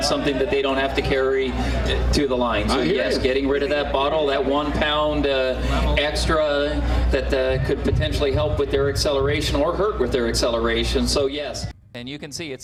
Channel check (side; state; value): both; identical; correlation 1.00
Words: something that they don't have to carry to the line. So yes, getting rid of that bottle, that 1 pound extra that could potentially help with their acceleration or hurt with their acceleration. So yes. And you can see